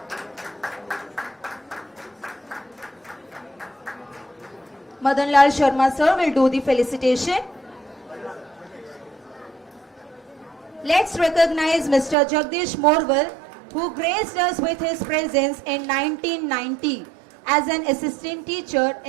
Madanlal Sharma sir will do the felicitation. Let's recognize Mr. Jagdish Morwal, who graced us with his presence in 1990 as an assistant teacher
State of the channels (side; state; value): left; drops out; at 12.2 s